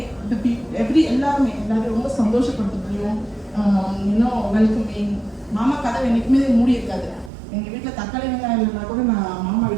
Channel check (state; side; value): drops out; left; at 7.3 s